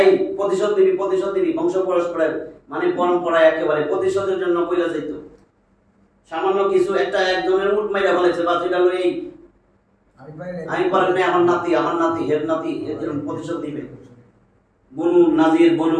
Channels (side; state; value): both; identical; correlation 1.00